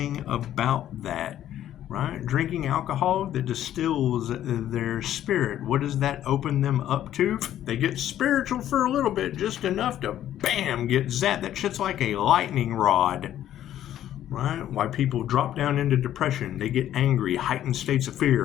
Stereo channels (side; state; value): right; quieter; 11.8 dB